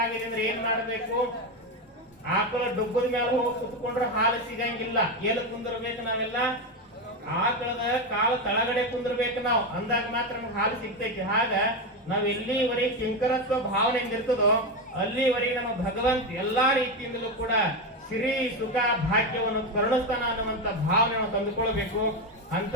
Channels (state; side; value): normal; both; correlation 0.12